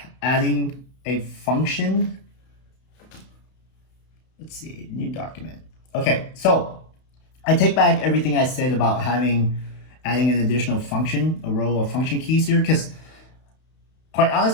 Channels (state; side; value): late; right; 32 ms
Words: adding a function. Let's see, new document. Okay, so I take back everything I said about adding an additional function, a row of function keys here, because quite